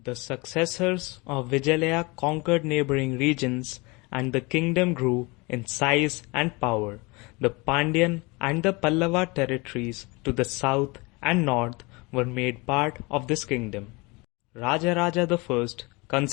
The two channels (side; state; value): right; quieter; 26.3 dB